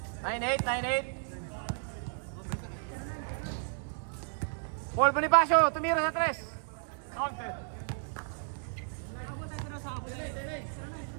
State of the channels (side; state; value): left; silent; 56 dB below the other